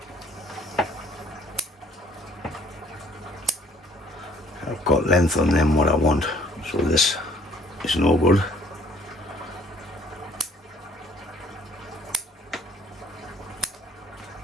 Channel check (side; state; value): both; normal; correlation 0.59